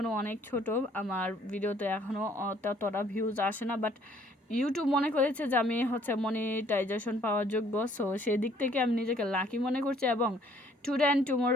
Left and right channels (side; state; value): both; normal; correlation 0.61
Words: অনেক ছোট, আমার ভিডিওতে এখনও ততটা ভিউজ আসে না, বাট ইউটিউব মনে করেছে যে আমি মনিটাইজেশন পাওয়ার যোগ্য। সো সেই দিক থেকে আমি নিজেকে লাকি মনে করছি, এবং টুডে অ্যান্ড